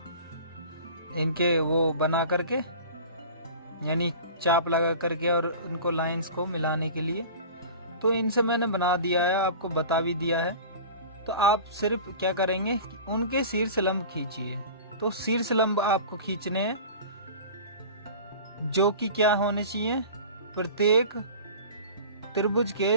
इनके वो बना करके, यानी चाप लगा करके, और उनको लाइंस को मिलाने के लिए। तो इनसे मैंने बना दिया है, आपको बता भी दिया है। तो आप सिर्फ क्या करेंगे, उनके शीर्ष लंब खींचिए। तो शीर्ष लंब आपको खींचने हैं, जो कि क्या होने चाहिए, प्रत्येक त्रिभुज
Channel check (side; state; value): both; inverted; correlation -0.38